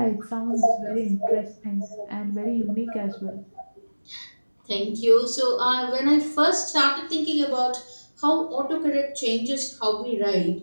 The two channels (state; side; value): inverted; both; correlation -1.00